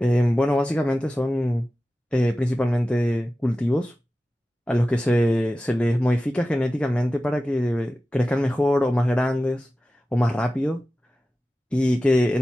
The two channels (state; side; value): normal; both; correlation 0.95